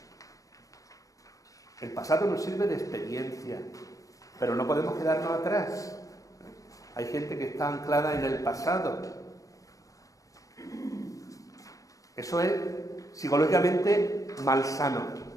El pasado nos sirve de experiencia, pero no podemos quedarnos atrás. Hay gente que está anclada en el pasado. Eso es psicológicamente malsano.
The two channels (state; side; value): late; right; 0.16 ms